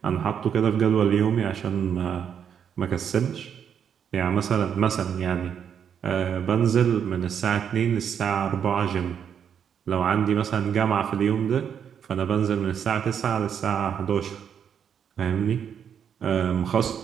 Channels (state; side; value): quieter; left; 8.1 dB